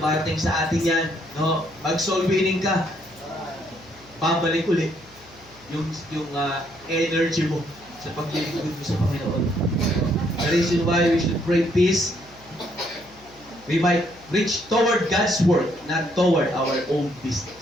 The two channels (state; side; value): noise; left; hum, 26 dB below the sound